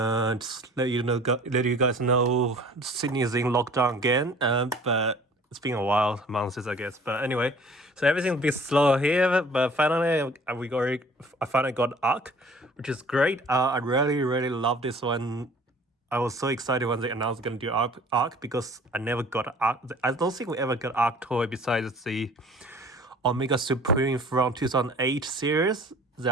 let you guys know, Sydney is in lockdown again. But it's been a while, months I guess. But anyway, so everything's a bit slow here. But finally, I finally got arc, which is great. I really love this one. I was so excited when they announced going to do Arc because I never got Arc. I don't think we ever got Arc toy besides the Omega Supreme from 2008 series.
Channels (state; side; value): normal; both; correlation 0.49